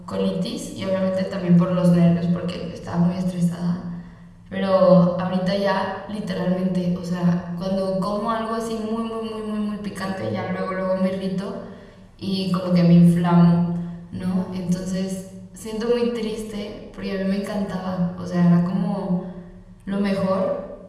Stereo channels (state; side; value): identical; both; correlation 1.00